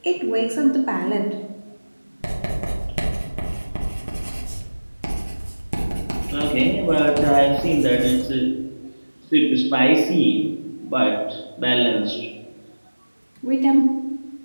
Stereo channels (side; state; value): both; inverted; correlation -1.00